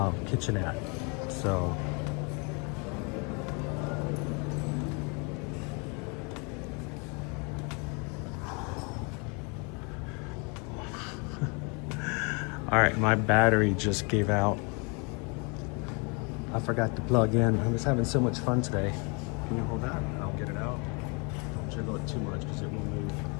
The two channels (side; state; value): right; quieter; 32.8 dB